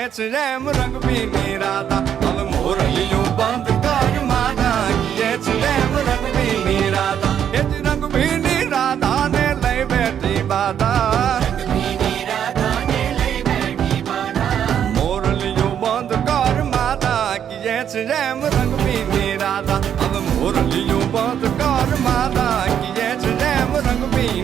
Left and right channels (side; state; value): left; quieter; 9.1 dB